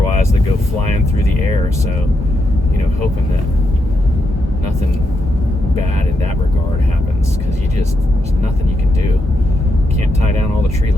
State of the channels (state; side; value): normal; both; correlation 0.82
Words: that go flying through the air. So, hoping that nothing bad in that regard happens, because there's nothing you can do. Can't tie down all the tree